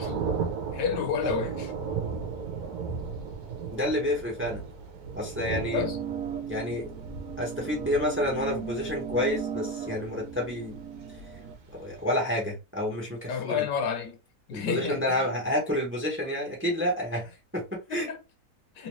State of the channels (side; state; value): both; normal; correlation 0.11